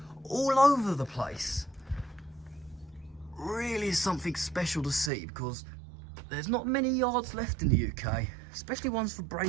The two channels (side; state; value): left; drops out; at 5.1 s